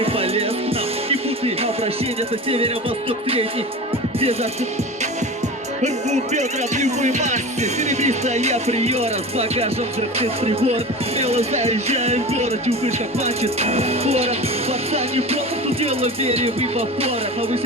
полез. Нам не путай обращение, это северо-восток средний. Где засып рвут бедра в любой массе. Серебристая приора с багажом взрывных прибор. Смело заезжаем в город, чувствуешь, как мачет город. Пацан не полностью дело вере в эвапора.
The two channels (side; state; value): both; normal; correlation 0.32